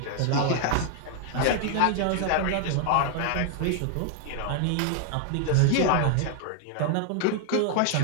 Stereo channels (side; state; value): both; different; correlation 0.00